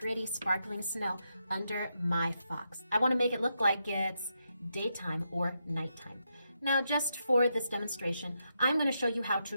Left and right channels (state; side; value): inverted; both; correlation -0.83